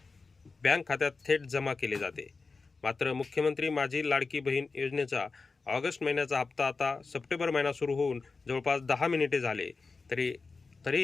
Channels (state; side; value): quieter; right; 4.2 dB